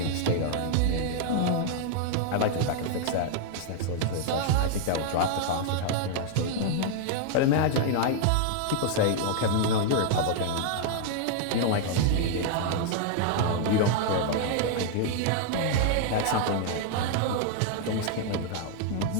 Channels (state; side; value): different; both; correlation 0.00